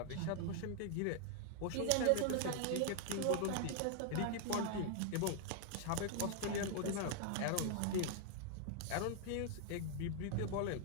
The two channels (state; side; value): different; both; correlation 0.00